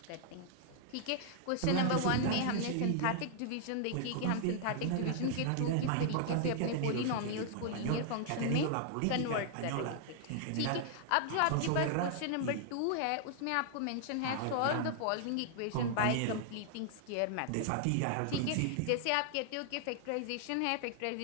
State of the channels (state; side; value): different; both; correlation -0.01